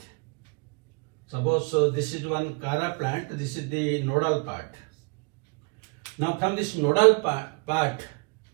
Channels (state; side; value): quieter; left; 32.0 dB